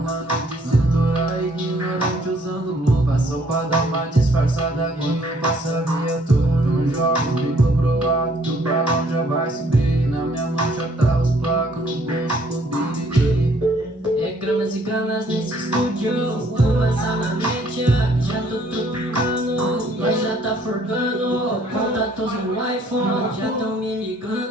de cintura ignorante usando luva, só pra dar uma disfarçada quando passa a viatura. Não joga, bico pro alto, o balão já vai subir. Na minha mão já tá os placos, no bolso o BD. É gramas e gramas nesse estúdio. Fumaça na mente, já tô tropicando. Nós já tá forgando contatos no iPhone, já tão me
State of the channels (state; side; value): normal; both; correlation 0.63